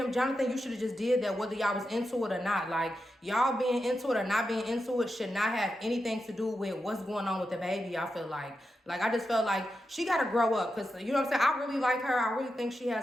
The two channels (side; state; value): both; normal; correlation 0.88